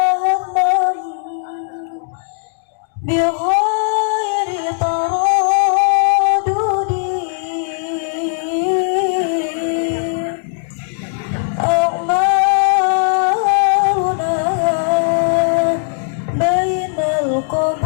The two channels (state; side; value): silent; right; digital silence